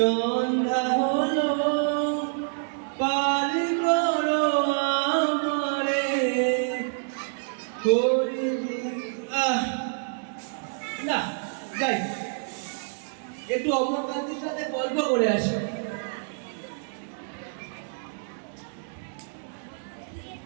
হলো, পার করো আমারে। না যাই, একটু অমরকান্তির সাথে গল্প করে আসি।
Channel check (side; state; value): left; silent; digital silence